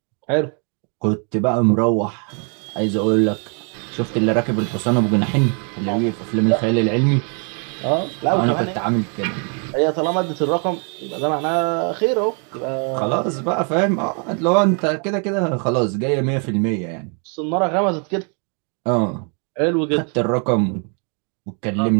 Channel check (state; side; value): quieter; left; 39.6 dB